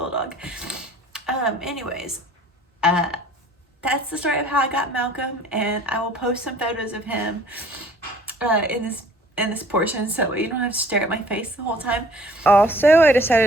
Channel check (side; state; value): both; normal; correlation 0.53